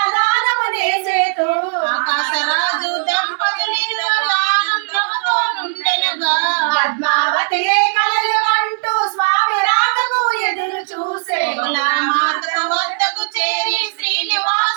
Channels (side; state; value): left; silent; digital silence